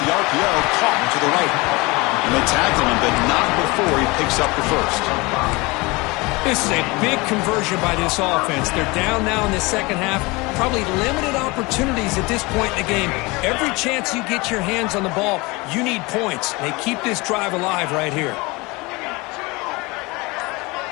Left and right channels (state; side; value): quieter; right; 24.7 dB